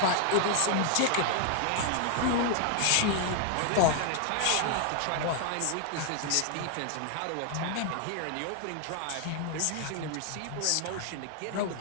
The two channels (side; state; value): both; different; correlation 0.00